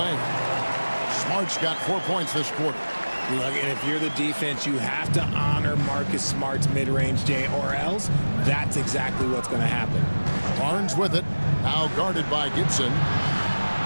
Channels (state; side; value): inverted; both; correlation -1.00